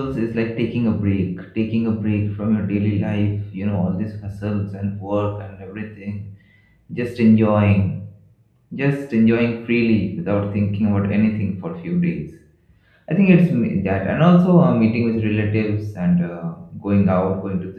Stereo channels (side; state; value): both; identical; correlation 1.00